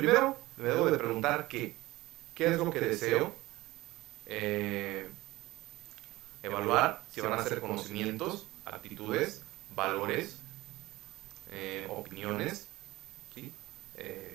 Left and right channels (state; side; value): quieter; left; 19.0 dB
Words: me debo de preguntar qué es lo que deseo evaluar, si van a ser conocimientos, actitudes, valores, opiniones, ¿sí?